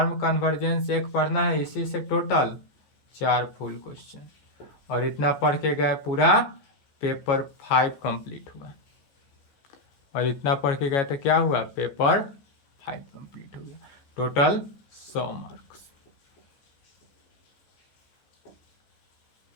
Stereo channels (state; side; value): late; right; 14 ms